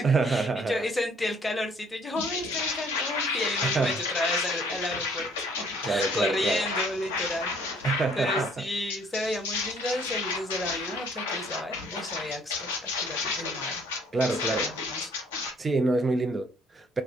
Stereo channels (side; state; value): both; normal; correlation 0.60